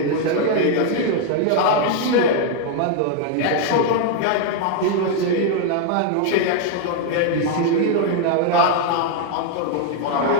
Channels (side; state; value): both; different; correlation 0.00